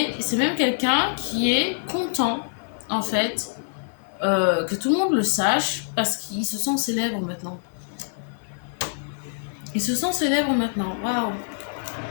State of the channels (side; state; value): right; silent; 56 dB below the other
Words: c'est même quelqu'un qui est content, en fait, que tout le monde le sache, parce qu'il se sent célèbre maintenant. Il se sent célèbre maintenant. Waouh.